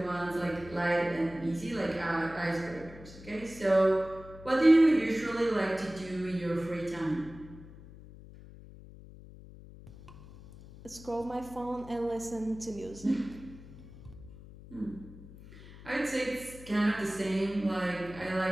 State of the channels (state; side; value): noise; left; hum, 18 dB below the sound